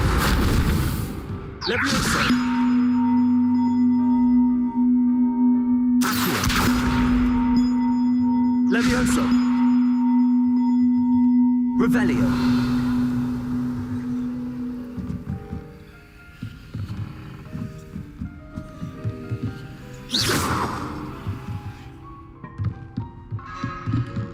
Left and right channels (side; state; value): both; identical; correlation 1.00